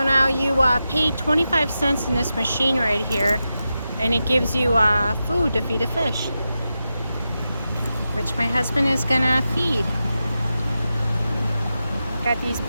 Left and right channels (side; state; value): both; inverted; correlation -0.91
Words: now you pay 25 cents in this machine right here, and it gives you food to feed a fish, which my husband is gonna feed. Got these